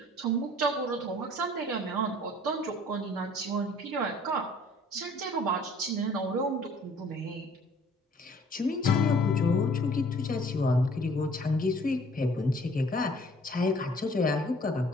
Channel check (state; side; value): normal; both; correlation 0.55